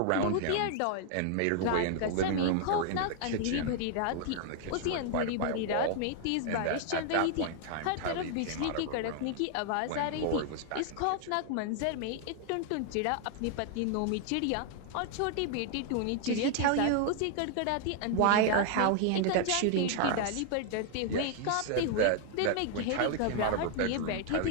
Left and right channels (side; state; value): both; different; correlation 0.00